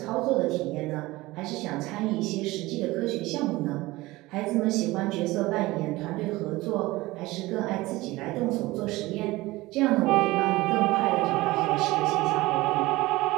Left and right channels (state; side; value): quieter; left; 19.8 dB